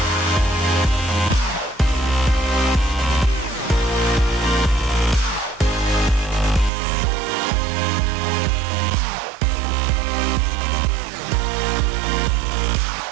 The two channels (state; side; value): drops out; left; at 6.7 s